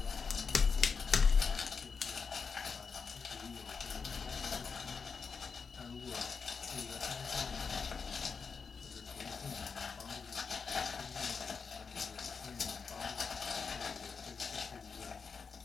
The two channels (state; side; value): quieter; right; 5.4 dB